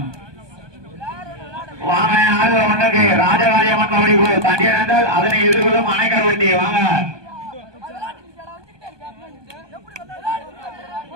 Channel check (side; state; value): left; late; 1.2 ms